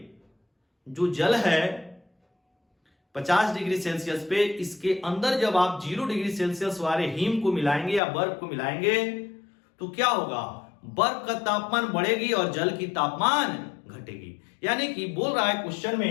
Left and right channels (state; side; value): drops out; right; at 8.0 s